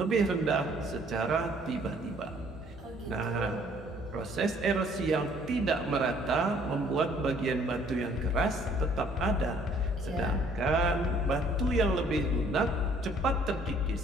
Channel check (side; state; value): both; normal; correlation 0.60